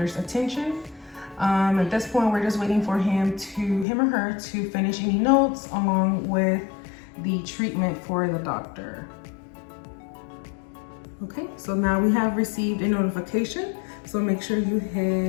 attention. At this point, we're just waiting for him or her to finish any notes along with the treatment for the doctor. Okay, so now we have received a notification. So make sure you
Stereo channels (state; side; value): drops out; right; at 3.9 s